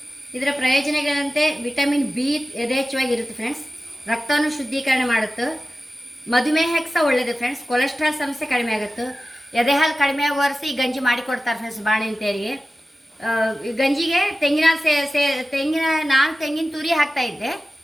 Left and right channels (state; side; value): normal; both; correlation 0.95